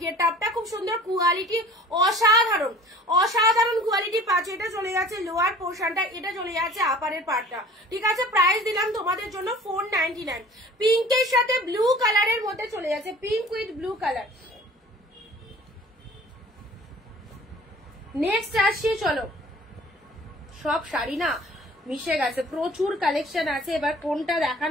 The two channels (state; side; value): normal; both; correlation 0.47